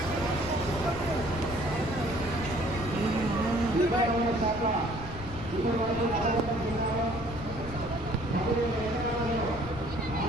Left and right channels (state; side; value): noise; left; rumble, 11 dB below the sound